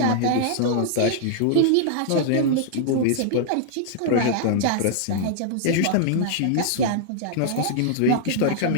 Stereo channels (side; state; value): both; different; correlation -0.01